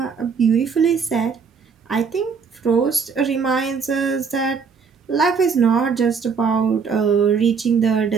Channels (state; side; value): quieter; left; 5.8 dB